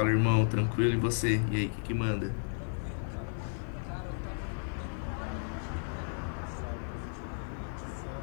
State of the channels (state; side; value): silent; right; 55 dB below the other